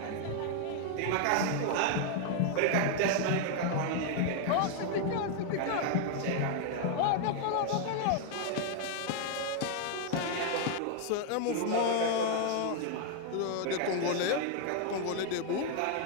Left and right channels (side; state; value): both; different; correlation 0.00